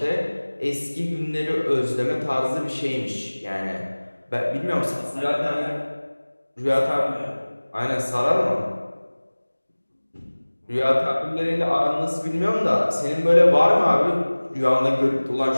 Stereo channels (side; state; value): both; inverted; correlation -1.00